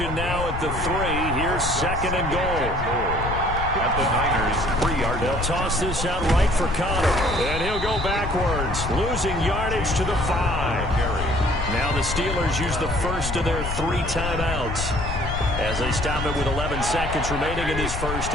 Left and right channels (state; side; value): noise; left; rumble, 5 dB below the sound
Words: now at the 3. Here's 2nd and goal. At the Niners, 3-yard. They'll toss this out right for Connor. And he'll go backwards, losing yardage to the 5. Now the Steelers use the first of their 3 timeouts as they stop it with 11 seconds remaining in this first